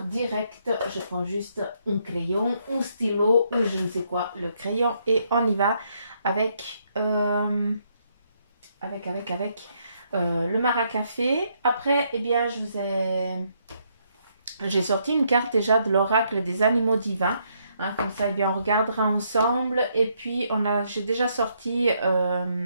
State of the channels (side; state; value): both; inverted; correlation -0.73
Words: direct, je prends juste un crayon, un stylo ou je ne sais quoi, le crayon et on y va avec le maracafé. Après, eh bien, j'ai sorti une carte déjà de l'oracle des animaux divins. Hein, comme ça, eh bien, on regardera ensemble. Et puis, j'ai déjà sorti